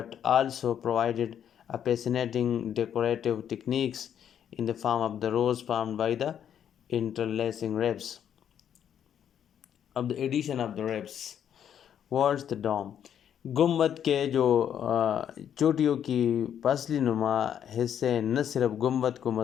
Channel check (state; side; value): quieter; right; 9.2 dB